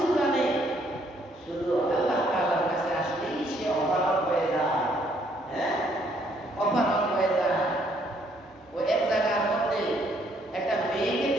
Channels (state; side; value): normal; both; correlation 0.68